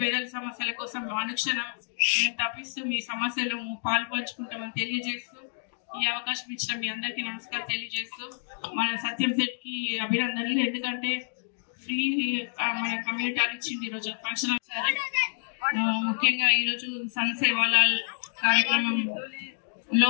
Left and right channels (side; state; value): right; silent; digital silence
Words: పేదల సమస్యల కోసం అనుక్షణం మేము తప్పిస్తూ మీ సమస్యలు పాల్పంచుకుంటామని తెలియజేస్తూ ఈ అవకాశం ఇచ్చిన మీ అందరికీ నమస్కారం తెలియజేస్తూ మన సత్యం సెట్ కి అభినందనలు. ఎందుకంటే ఫ్రీ మన కమ్యూనిటీ హాల్ ఇచ్చింది ఈరోజు ఫంక్షన్. ముఖ్యంగా ఈరోజు సన్ సేవాలాల్